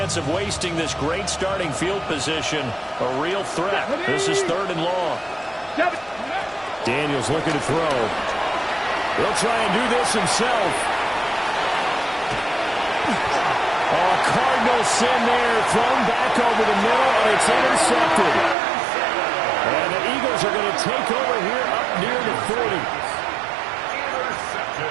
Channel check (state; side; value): drops out; left; at 18.6 s